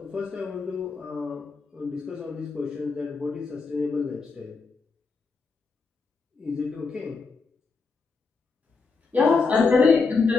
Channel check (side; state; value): right; quieter; 4.5 dB